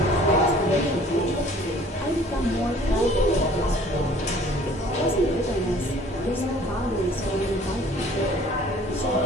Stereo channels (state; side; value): normal; both; correlation 0.52